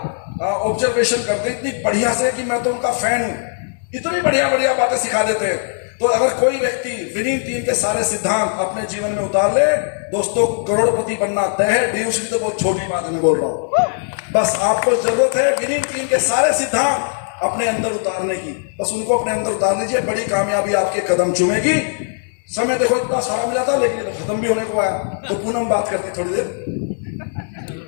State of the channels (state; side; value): silent; right; digital silence